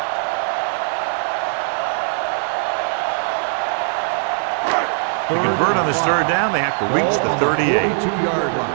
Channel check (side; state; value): left; silent; digital silence